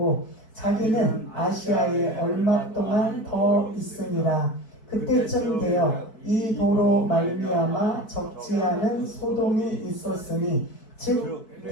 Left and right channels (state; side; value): late; right; 4.6 ms